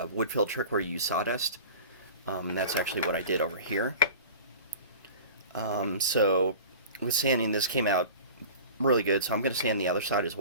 Woodfill trick where you use sawdust. That's actually what I did over here. So with sanding, this came out really good, so I'm going to sand the other side as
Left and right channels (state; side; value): inverted; both; correlation -0.38